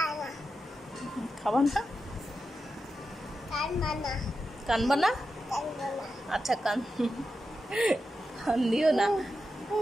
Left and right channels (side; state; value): both; normal; correlation 0.89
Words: খাবা না? কানবা না? আচ্ছা কান দিও না।